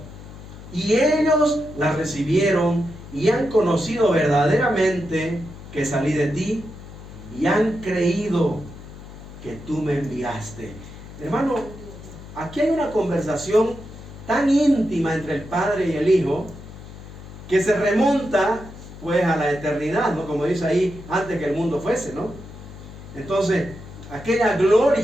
y ellos las recibieron y han conocido verdaderamente que salí de ti, y han creído que tú me enviaste. Hermano, aquí hay una conversación tan íntima entre el Padre y el Hijo, que se remonta pues a la eternidad, ¿no? Como dice ahí, antes que el mundo fuese, ¿no? Entonces, aquella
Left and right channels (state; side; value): noise; left; hum, 15 dB below the sound